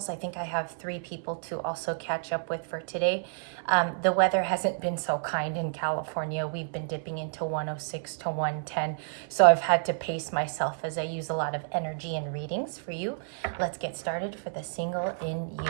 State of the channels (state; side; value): silent; left; 58 dB below the other